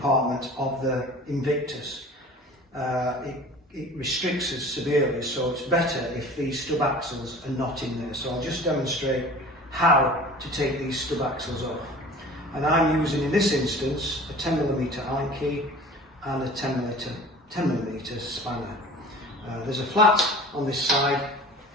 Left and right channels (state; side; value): normal; both; correlation 0.42